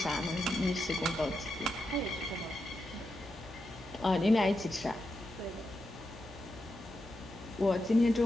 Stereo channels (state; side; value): normal; both; correlation 0.86